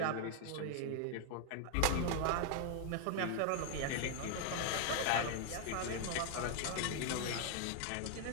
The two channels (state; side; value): different; both; correlation 0.00